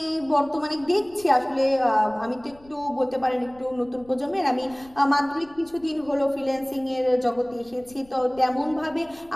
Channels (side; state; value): left; noise; rumble, 26 dB below the sound